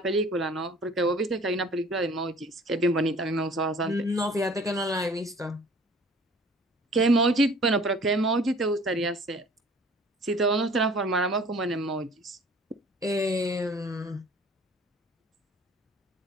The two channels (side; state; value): both; normal; correlation 0.50